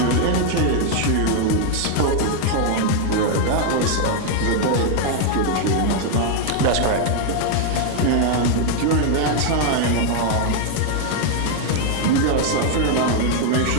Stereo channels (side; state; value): both; different; correlation 0.00